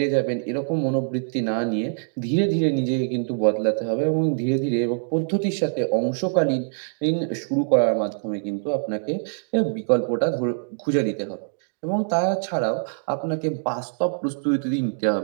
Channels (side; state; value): left; silent; digital silence